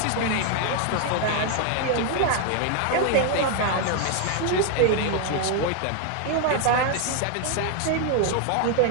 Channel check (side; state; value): both; different; correlation 0.00